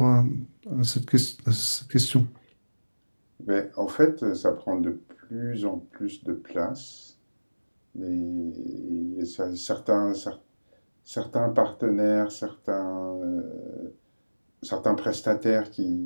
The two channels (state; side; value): inverted; both; correlation -1.00